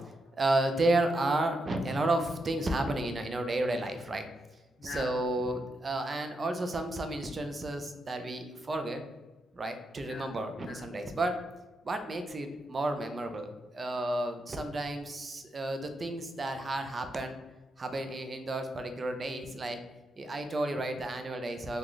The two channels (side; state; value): both; normal; correlation 0.83